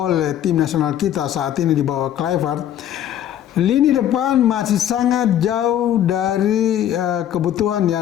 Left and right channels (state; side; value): quieter; right; 10.9 dB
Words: tim nasional kita saat ini di bawah Kluivert, lini depan masih sangat jauh dari kebutuhan